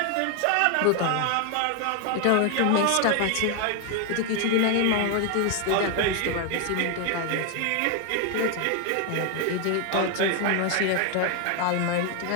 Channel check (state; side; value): different; both; correlation 0.01